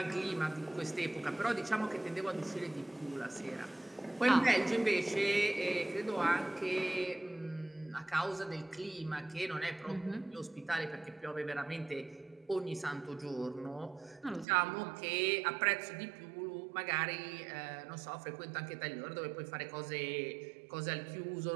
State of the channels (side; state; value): left; drops out; at 14.5 s